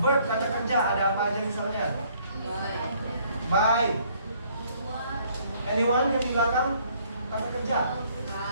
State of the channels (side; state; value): both; inverted; correlation -0.63